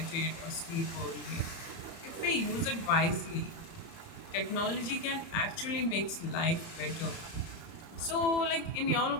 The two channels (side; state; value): right; late; 30 ms